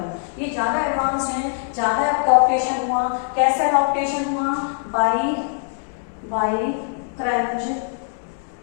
ये ज्यादा एडवांस है, ज्यादा एडॉप्टेशन हुआ। कैसे एडॉप्टेशन हुआ, बाई क्रंच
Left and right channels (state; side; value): silent; right; 64 dB below the other